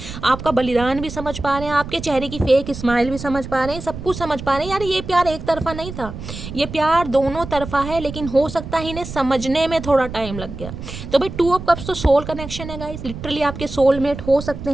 आपका बलिदान भी समझ पा रहे हैं, आपके चेहरे की फेक स्माइल भी समझ पा रहे हैं, सब कुछ समझ पा रहे हैं। यार ये प्यार एक तरफा नहीं था, ये प्यार दोनों तरफा है, लेकिन हो सकता है इन्हें समझने में थोड़ा टाइम लग गया। तो भाई 2 ऑफ कप्स तो सोल कनेक्शन है गाइस, लिटरली आपके सोलमेट हो सकते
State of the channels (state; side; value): noise; right; rumble, 10 dB below the sound